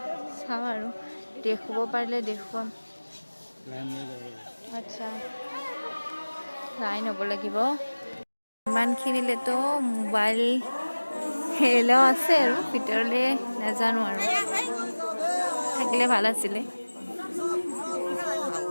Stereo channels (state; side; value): inverted; both; correlation -1.00